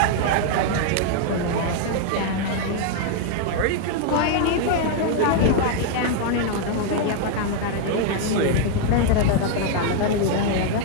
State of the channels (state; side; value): different; both; correlation 0.00